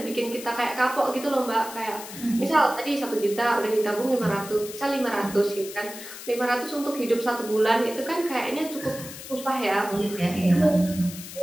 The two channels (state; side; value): noise; left; hiss, 12 dB below the sound